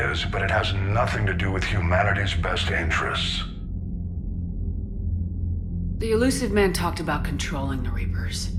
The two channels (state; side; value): identical; both; correlation 1.00